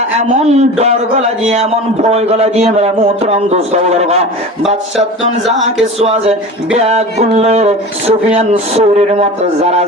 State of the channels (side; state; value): both; normal; correlation 0.34